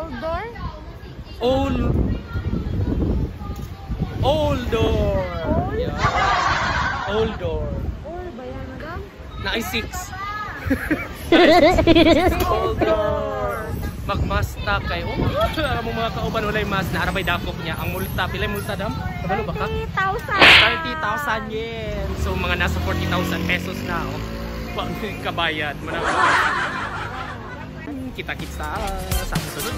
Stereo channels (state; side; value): identical; both; correlation 1.00